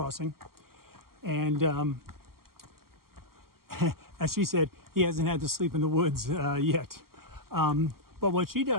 And as she said, he hasn't had to sleep in the woods yet. But what she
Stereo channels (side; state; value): left; late; 0.93 ms